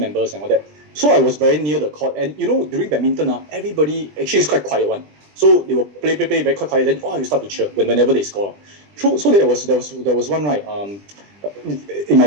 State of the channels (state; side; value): late; left; 20 ms